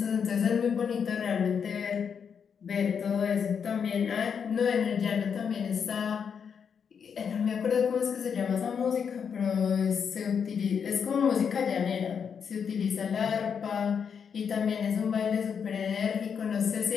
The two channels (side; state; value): right; quieter; 6.9 dB